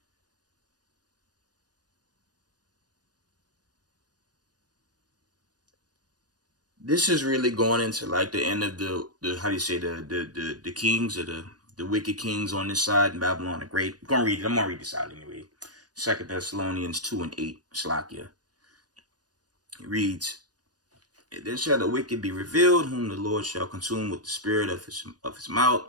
This is really going into like the end of the how do you say the kings or the wicked kings on this side in Babylon the Great. I'm gonna read it. I'm gonna read this out anyway. Second Thessalonians 2:8. Slakia. It reads, "Then shall the wicked be revealed, whom the Lord shall consume with the spirit of his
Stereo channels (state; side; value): late; left; 0.69 ms